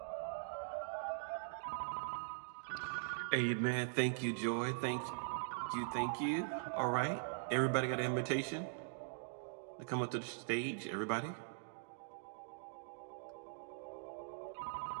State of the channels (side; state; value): left; silent; digital silence